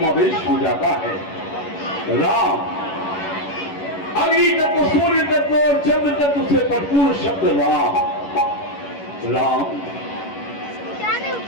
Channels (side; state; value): right; late; 11 ms